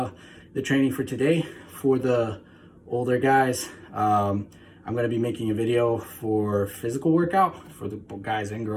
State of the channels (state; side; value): identical; both; correlation 1.00